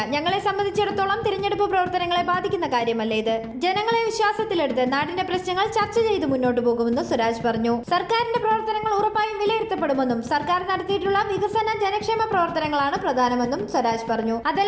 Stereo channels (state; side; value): identical; both; correlation 1.00